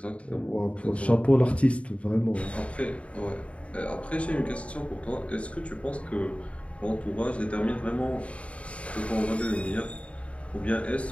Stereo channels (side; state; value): right; late; 0.063 ms